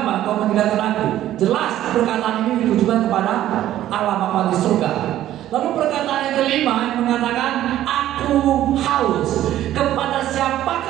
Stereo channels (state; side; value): quieter; left; 12.9 dB